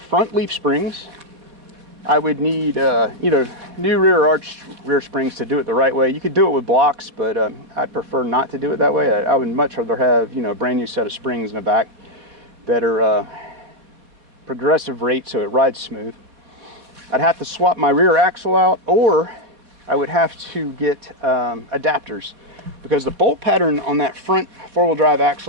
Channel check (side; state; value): left; late; 4.0 ms